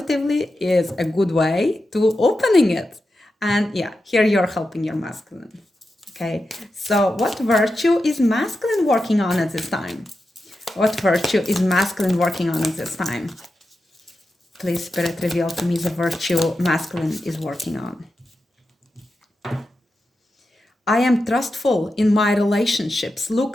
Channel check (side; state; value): both; normal; correlation 0.90